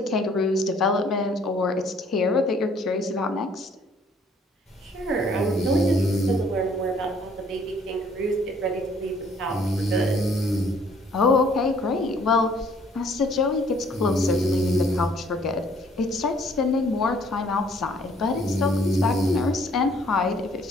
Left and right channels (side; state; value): both; normal; correlation 0.61